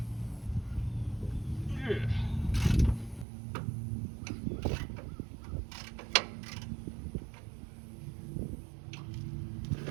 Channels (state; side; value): drops out; left; at 3.2 s